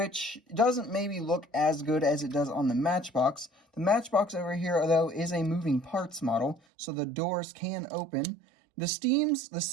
doesn't maybe look as good as it does on the Matchbox. The Matchbox over here, though, is a moving parts model, so the doors can open. The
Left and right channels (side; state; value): left; drops out; at 6.6 s